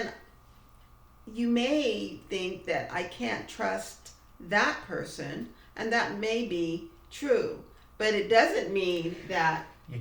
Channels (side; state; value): both; identical; correlation 1.00